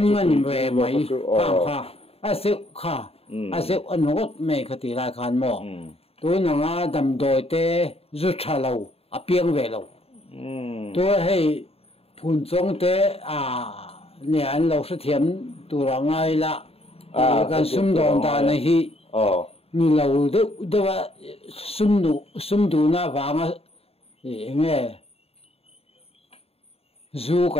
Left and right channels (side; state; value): right; late; 0.29 ms